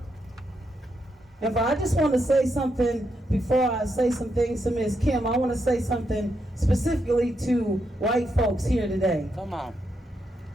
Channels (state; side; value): normal; both; correlation 0.81